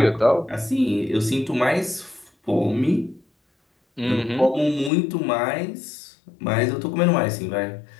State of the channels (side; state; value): right; drops out; at 4.9 s